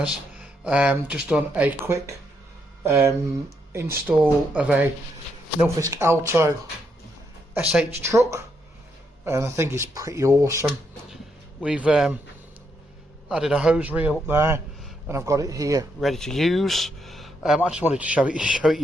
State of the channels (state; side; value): normal; both; correlation 0.78